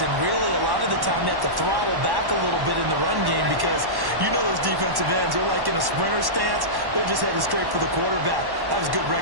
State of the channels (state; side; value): late; left; 1.1 ms